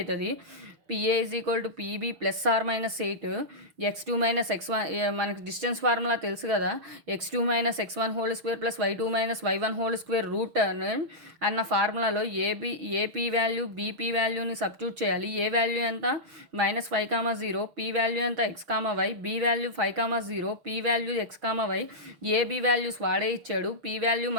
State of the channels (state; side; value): late; left; 6.2 ms